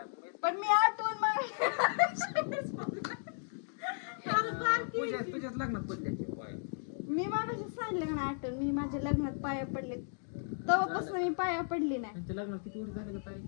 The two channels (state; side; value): silent; right; digital silence